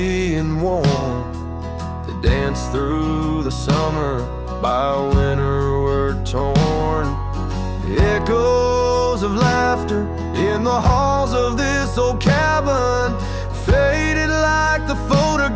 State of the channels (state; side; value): identical; both; correlation 1.00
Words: and warm, they danced through the summer, by winter were torn. The echoes of laughter in the halls of this old cabin faded like the